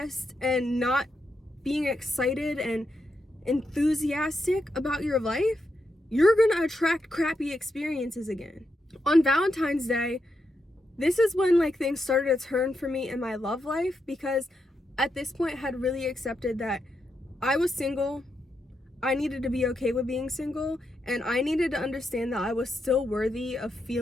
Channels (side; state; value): both; normal; correlation 0.83